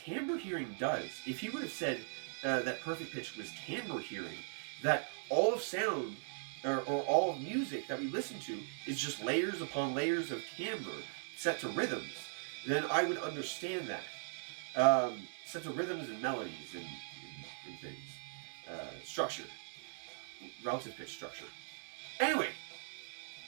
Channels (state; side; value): silent; left; 52 dB below the other